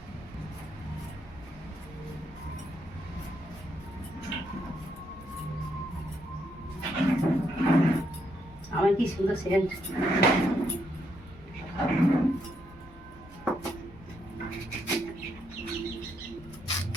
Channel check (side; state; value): both; normal; correlation 0.77